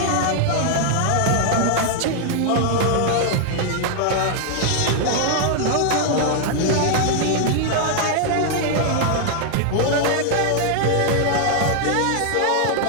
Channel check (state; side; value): different; both; correlation 0.00